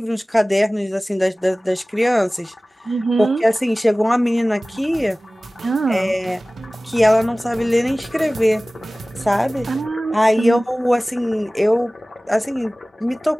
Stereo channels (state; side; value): normal; both; correlation 0.98